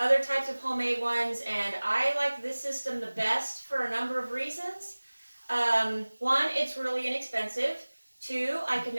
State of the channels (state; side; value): inverted; both; correlation -1.00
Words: types of homemade ones, and I like this system the best for a number of reasons. One, it's really inexpensive. Two, I can